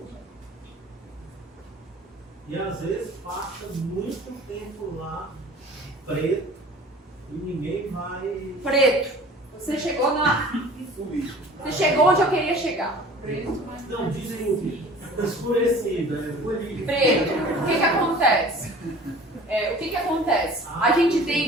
E às vezes passa muito tempo lá, preto, e ninguém vai. Preto. Você chegou na. Você chegou onde eu queria chegar. Preto. Não, desculpe. Escurecida. Preto. O que acontece? O que acontece? A gente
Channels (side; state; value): both; normal; correlation 0.45